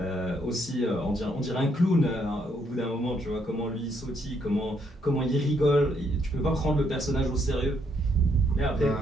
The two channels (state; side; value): normal; both; correlation 0.73